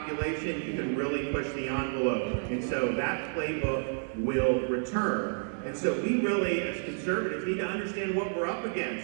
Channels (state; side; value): silent; left; 58 dB below the other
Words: you can really push the envelope. And so that playbook will return. And so we really, as conservatives, need to understand what we're up